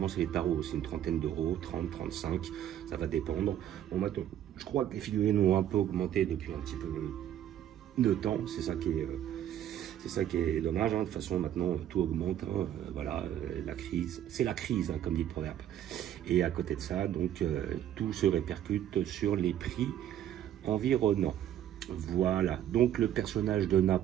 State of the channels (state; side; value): quieter; left; 11.0 dB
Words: c'est les tarots, c'est une trentaine d'euros, 30, 35, ça va dépendre. Bon maintenant, je crois que les figurines ont un peu augmenté depuis un petit peu de temps, c'est ça qui est dommage, de toute façon maintenant tout augmente, voilà, la crise, c'est la crise, comme dit le proverbe. Et à côté de ça, donc tout se répercute sur les prix environnants. Voilà, donc le personnage de